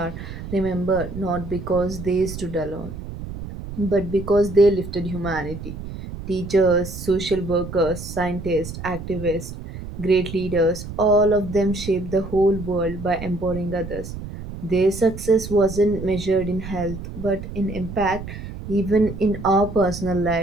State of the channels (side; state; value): right; noise; rumble, 10 dB below the sound